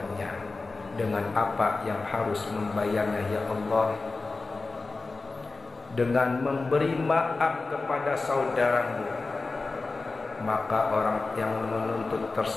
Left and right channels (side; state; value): right; quieter; 3.7 dB